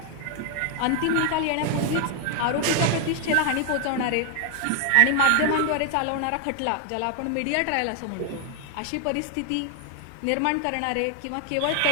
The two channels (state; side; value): different; both; correlation 0.00